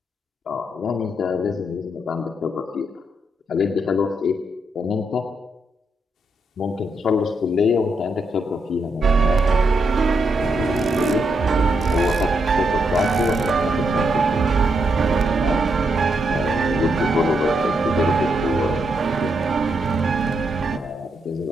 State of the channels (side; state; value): both; normal; correlation 0.80